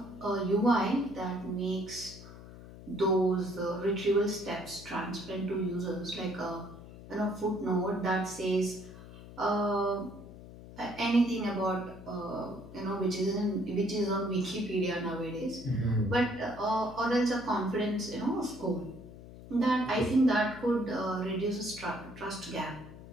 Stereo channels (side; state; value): left; noise; hum, 16 dB below the sound